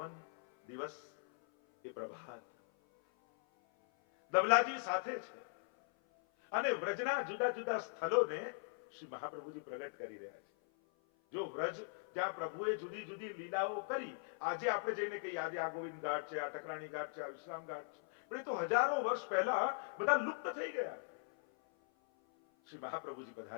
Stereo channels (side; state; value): right; silent; 51 dB below the other